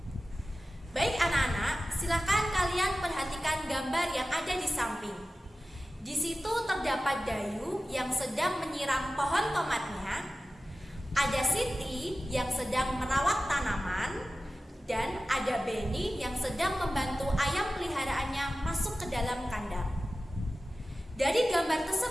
Baik anak-anak, silakan kalian perhatikan gambar yang ada di samping. Di situ terdapat Dayu yang sedang menyiram pohon tomatnya, ada Siti yang sedang merawat tanaman, dan ada Beni yang sedang membantu ayam peliharaannya masuk ke dalam kandang. Dari gambar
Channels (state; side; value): normal; both; correlation 0.94